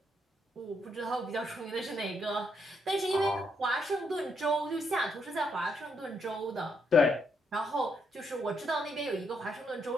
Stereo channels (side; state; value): both; normal; correlation 0.76